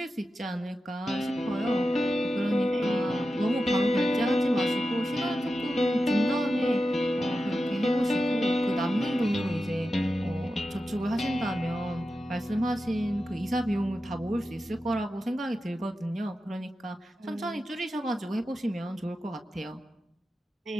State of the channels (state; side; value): normal; both; correlation 0.91